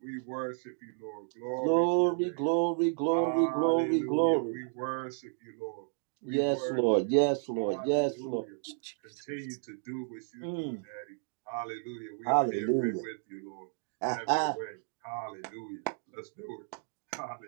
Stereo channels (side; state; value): left; silent; 56 dB below the other